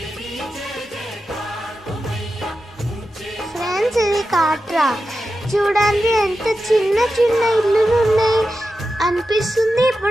ఫ్రెండ్స్, ఇది కాట్రా. చూడండి ఎంత చిన్న చిన్న ఇల్లులు ఉన్నాయి అనిపిస్తుంది.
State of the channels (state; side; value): normal; both; correlation 0.91